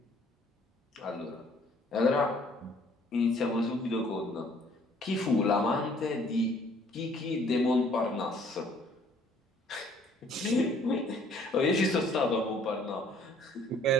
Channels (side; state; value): both; normal; correlation 0.59